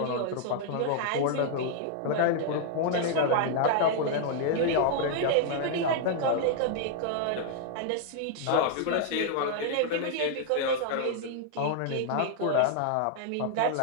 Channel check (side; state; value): both; different; correlation -0.01